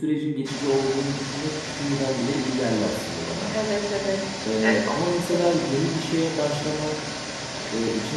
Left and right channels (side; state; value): both; identical; correlation 1.00